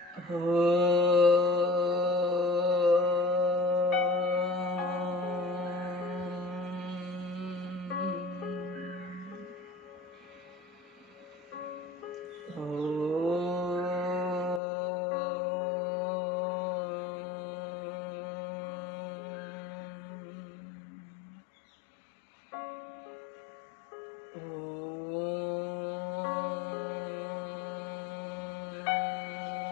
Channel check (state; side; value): drops out; right; at 14.6 s